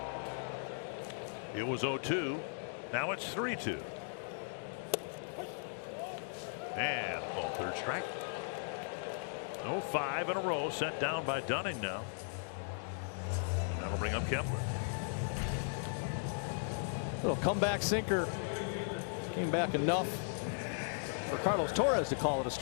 It was 0-2. Now it's 3-2. And called third strike. 5 in a row set down by Dunning now. And that'll bring up Kepler. Little comeback sinker. Came back enough for Carlos Torres to call it a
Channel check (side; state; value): right; silent; digital silence